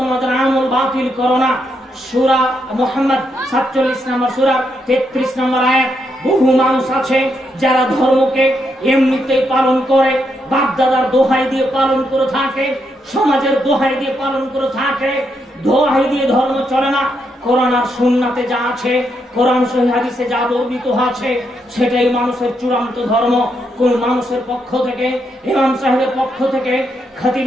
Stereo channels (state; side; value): normal; both; correlation 0.80